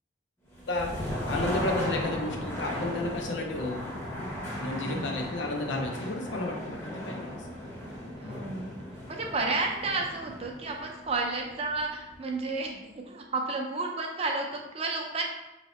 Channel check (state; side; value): normal; both; correlation 0.18